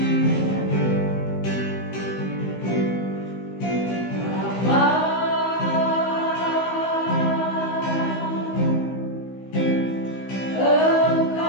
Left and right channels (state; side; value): late; right; 16 ms